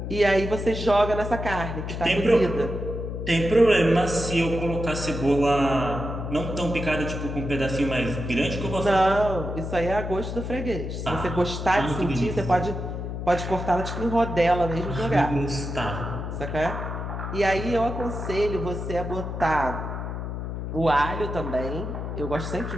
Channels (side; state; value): left; noise; hum, 5 dB below the sound